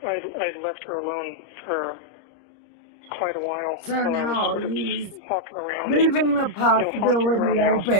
I'd left her alone for quite a while. So now he's walking around, leaving the possibility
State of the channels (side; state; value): right; late; 30 ms